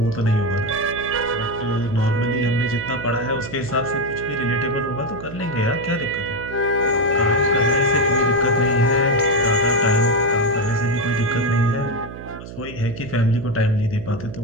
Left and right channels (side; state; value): right; noise; hum, 12 dB below the sound